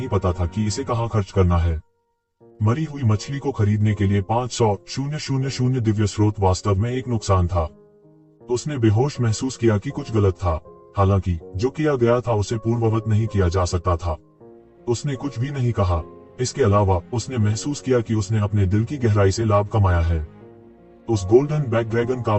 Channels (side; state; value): both; identical; correlation 1.00